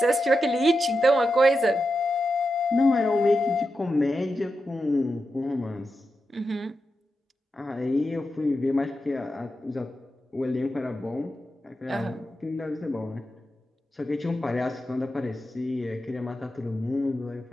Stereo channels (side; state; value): both; normal; correlation 0.89